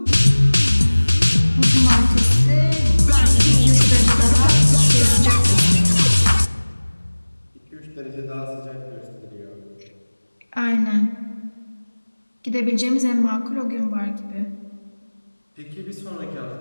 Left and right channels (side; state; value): both; inverted; correlation -1.00